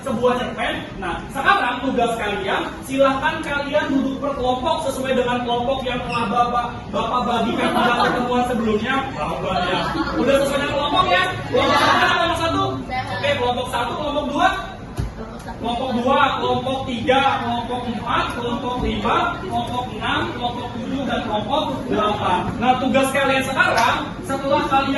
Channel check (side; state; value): both; identical; correlation 1.00